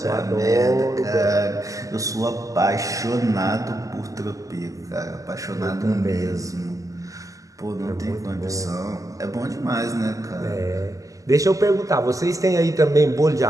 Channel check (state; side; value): late; left; 0.16 ms